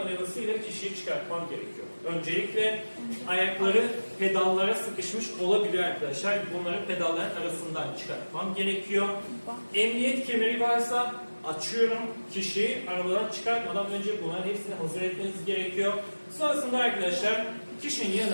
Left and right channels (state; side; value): inverted; both; correlation -1.00